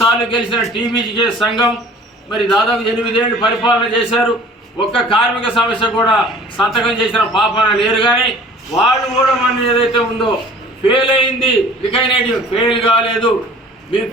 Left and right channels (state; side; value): normal; both; correlation 0.48